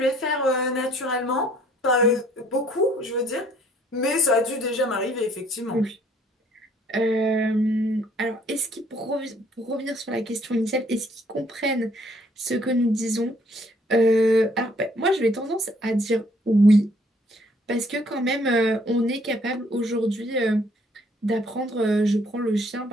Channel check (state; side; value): normal; both; correlation 0.63